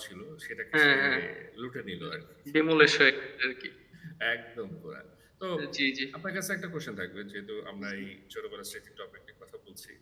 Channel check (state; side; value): identical; both; correlation 1.00